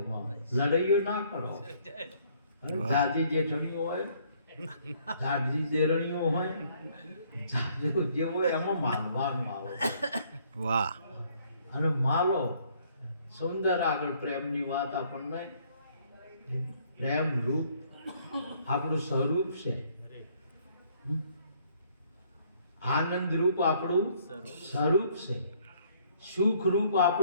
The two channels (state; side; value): inverted; both; correlation -0.64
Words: લડાઈઓ ના કરો. જાજી જેઠણીઓ હોય જાજી દેરણીઓ હોય જાજુ જે હોય એમાં માલવાનું આવે વાહ અને માલો સુંદર આગળ પ્રેમની વાત આપણને પ્રેમ રૂપ આપણું સ્વરૂપ છે. આનંદ રૂપ આપણું સ્વરૂપ છે. સુખ રૂપ